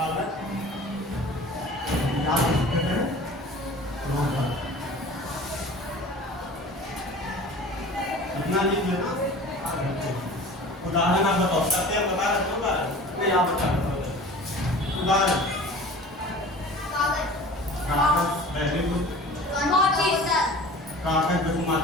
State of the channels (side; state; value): both; normal; correlation 0.42